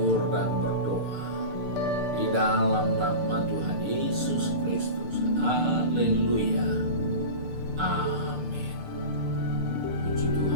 dan berdoa di dalam nama Tuhan Yesus Kristus. Haleluya. Amin. Puji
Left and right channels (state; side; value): late; left; 6.6 ms